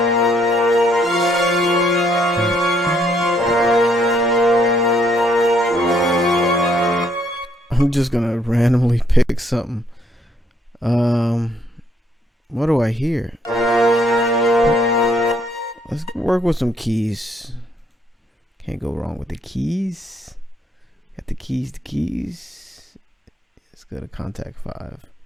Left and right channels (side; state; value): both; normal; correlation 0.69